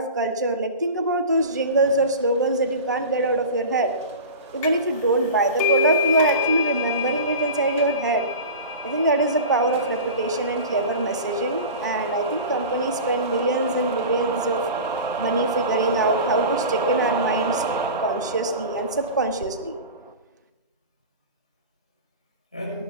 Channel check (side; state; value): both; inverted; correlation -0.32